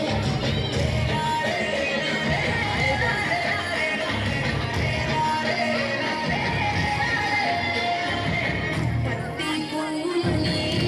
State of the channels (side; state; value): both; identical; correlation 1.00